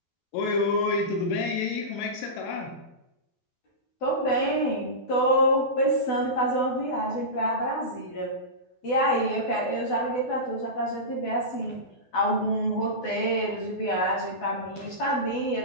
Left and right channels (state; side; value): late; right; 12 ms